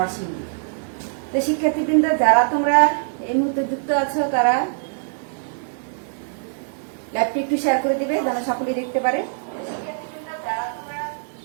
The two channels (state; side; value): silent; left; 64 dB below the other